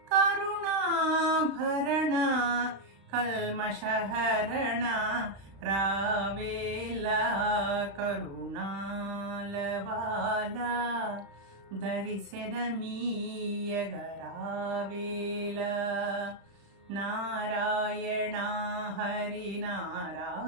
కరుణాభరణ కల్మషహరణ రావేలా కరుణాల బాల దర్శనమీయగరావేలా నారాయణ హరి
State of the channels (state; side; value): late; left; 36 ms